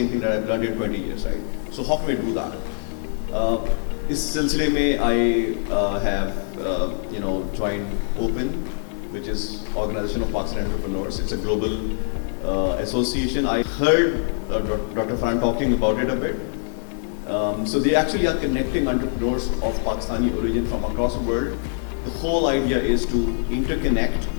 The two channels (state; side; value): silent; right; digital silence